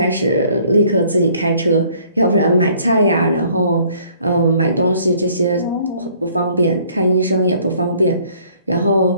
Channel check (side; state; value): both; inverted; correlation -0.59